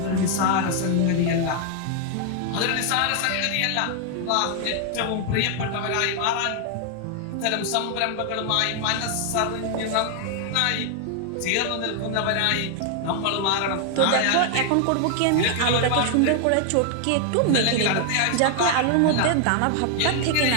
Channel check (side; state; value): both; different; correlation 0.00